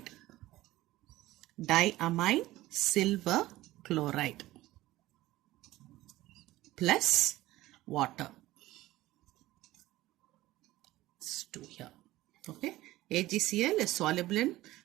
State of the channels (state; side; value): quieter; left; 16.9 dB